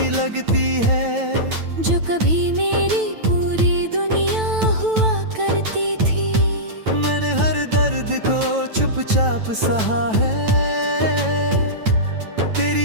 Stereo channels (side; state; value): left; late; 9.1 ms